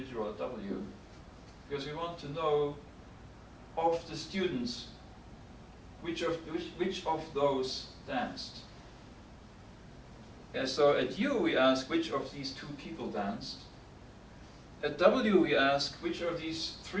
at W, because we want to know of the students which of those danced. And so at U we ask which of these 2 people danced. At W we ask which of these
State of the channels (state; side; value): identical; both; correlation 1.00